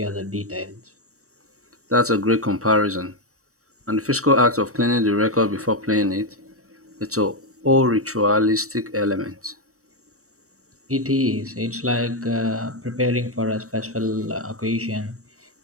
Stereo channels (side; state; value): left; late; 0.65 ms